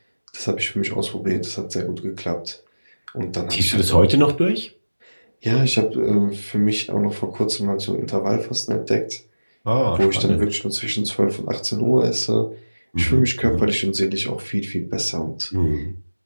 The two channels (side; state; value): both; inverted; correlation -1.00